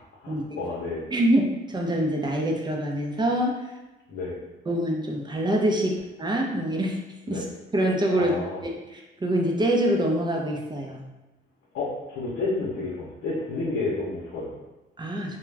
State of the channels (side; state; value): both; normal; correlation 0.60